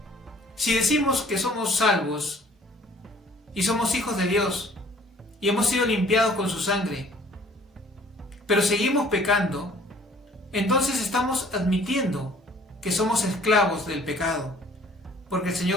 Si decimos que somos salvos y somos hijos de Dios y hemos sido limpiados con su sangre, pero seguimos pecando, entonces estamos admitiendo que somos esclavos del pecado. porque el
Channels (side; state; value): both; normal; correlation 0.55